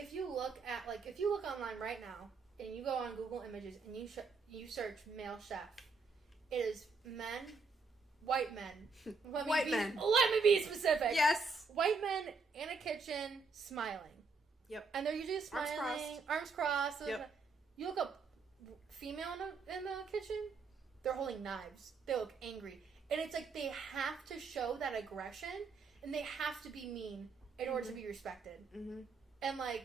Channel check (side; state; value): left; quieter; 4.3 dB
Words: you look at if you look online right now and you go on Google Images and you search male chef, it is men, white men. White men. Let me be specific. Yes. White men in a kitchen smiling. Yep. And they're usually smiling, arms crossed. Yep. You look up female in the kitchen, they're holding knives. They look angry. And it's they have to show that aggression, and they have to be mean in order to be respected. Mm-hmm. And